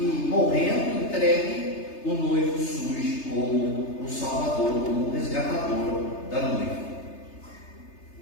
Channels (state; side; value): late; right; 3.3 ms